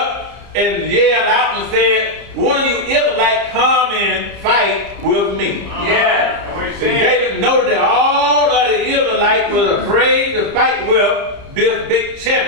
and yelled out and said, one of you Israelites come and fight with me. Yeah. And David noted that all of the Israelites were afraid to fight with this big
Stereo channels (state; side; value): late; left; 30 ms